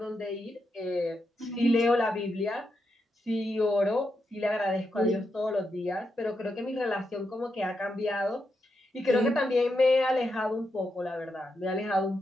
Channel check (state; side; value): normal; both; correlation 0.84